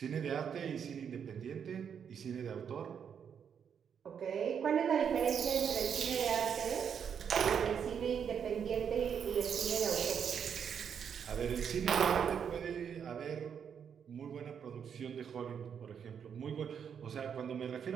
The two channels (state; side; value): quieter; left; 7.6 dB